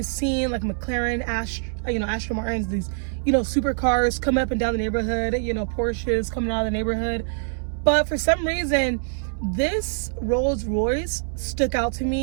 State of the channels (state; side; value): silent; left; 62 dB below the other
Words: seeing like McLaren, Aston Martins, these, you know, supercars coming up and down the neighborhood, you know, Porsches coming out of the neighborhood. But for some reason, this Rolls Royce stuck out to